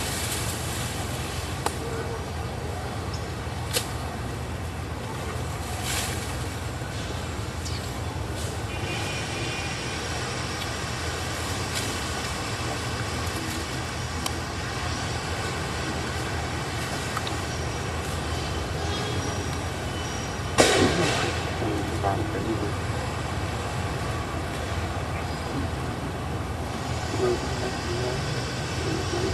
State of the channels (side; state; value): both; identical; correlation 1.00